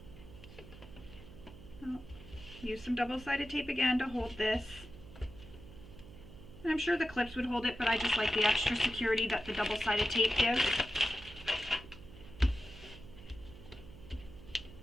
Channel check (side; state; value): right; noise; hum, 17 dB below the sound